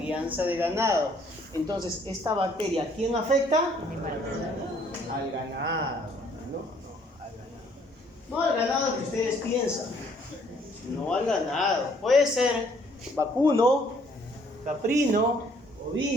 de ganado. Entonces, esta bacteria, ¿a quién afecta? Al ganado. No al ganado que ustedes piensan, no al ganado. Puede ser vacuno, caprino,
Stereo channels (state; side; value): normal; both; correlation 0.63